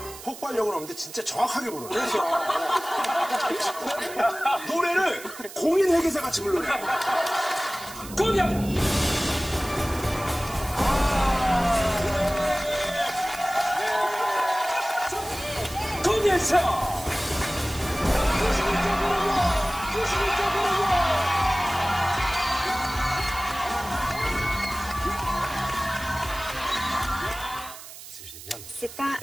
폭발력은 없는데 진짜 정확하게 부르네. 그렇죠. 노래를 공인 회계사 같이 부르네. 공연. 공연서. C'est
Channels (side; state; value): right; noise; hiss, 15 dB below the sound